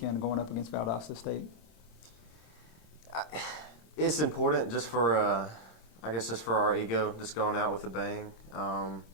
going up against Valdosta State? It's important just for. I guess just for our ego, just going out with a bang.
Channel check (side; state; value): right; late; 27 ms